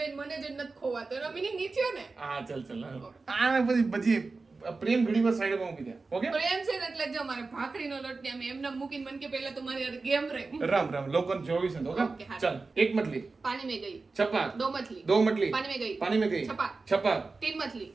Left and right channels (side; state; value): left; quieter; 3.9 dB